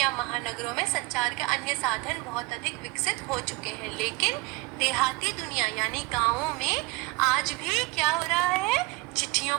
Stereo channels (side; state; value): left; quieter; 23.2 dB